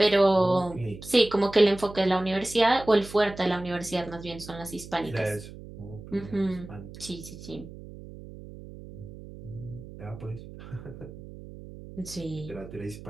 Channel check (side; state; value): right; noise; hum, 15 dB below the sound